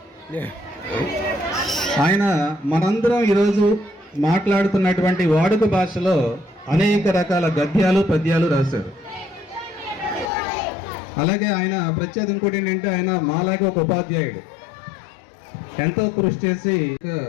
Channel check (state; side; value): drops out; right; at 10.3 s